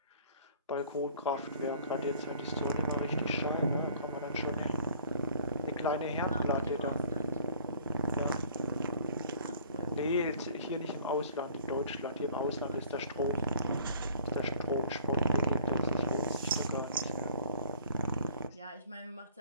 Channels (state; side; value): inverted; both; correlation -0.52